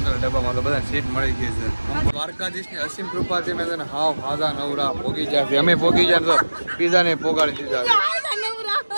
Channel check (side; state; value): both; inverted; correlation -1.00